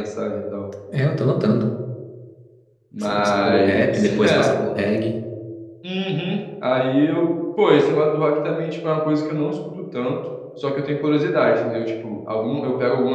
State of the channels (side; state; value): both; identical; correlation 1.00